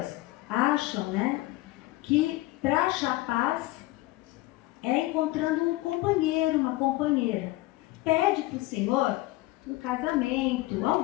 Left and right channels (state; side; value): quieter; right; 18.8 dB